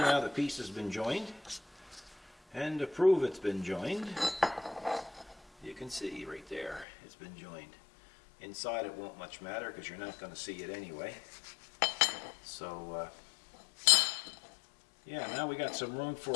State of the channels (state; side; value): drops out; right; at 6.9 s